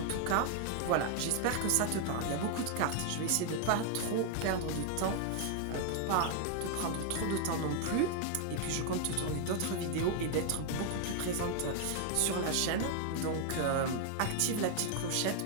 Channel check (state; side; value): different; both; correlation 0.00